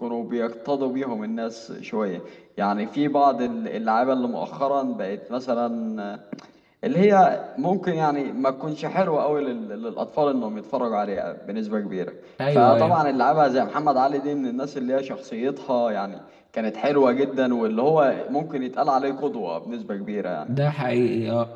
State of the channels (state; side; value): identical; both; correlation 1.00